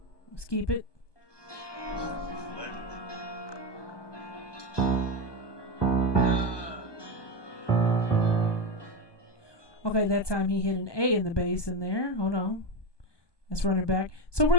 Let's keep it. Okay, that time he hit an A in the bass in there. Hold on. Let's run it back. So we're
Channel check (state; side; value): late; right; 1.2 ms